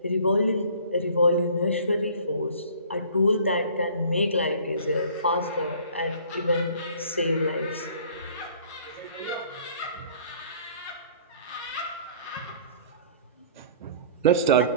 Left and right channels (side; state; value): both; inverted; correlation -0.50